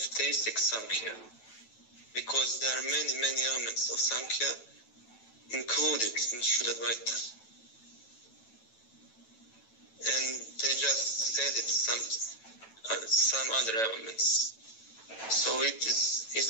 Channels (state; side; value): late; right; 9.1 ms